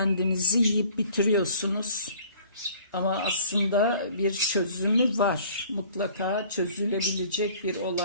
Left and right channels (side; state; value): both; inverted; correlation -0.51